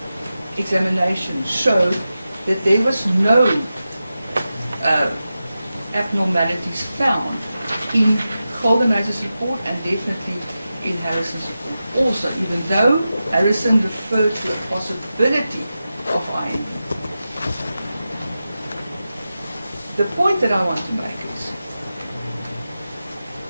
examination showed that there was no abnormalities found in Guldenhuis's report and definitely in Harrison's report also, even though Harrison referred to a possibility of IND. The point that I want to make is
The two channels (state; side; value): inverted; both; correlation -0.92